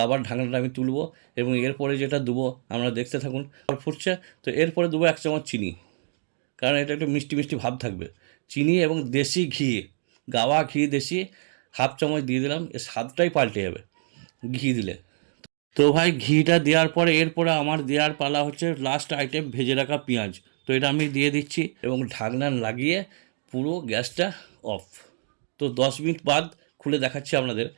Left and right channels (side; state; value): left; silent; digital silence